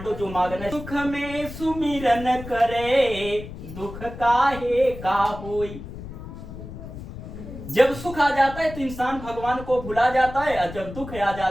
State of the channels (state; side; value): noise; left; rumble, 12 dB below the sound